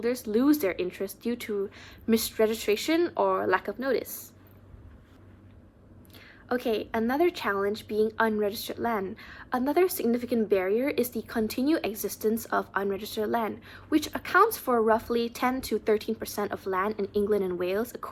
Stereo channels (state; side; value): identical; both; correlation 1.00